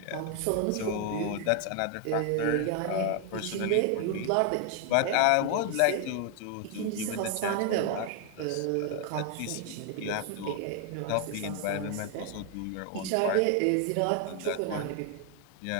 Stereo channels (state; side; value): different; both; correlation 0.00